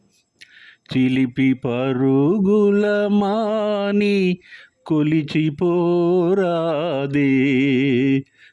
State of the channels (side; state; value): both; identical; correlation 1.00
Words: చిలిపి పరుగుల మాని కొలిచిపోరాదే,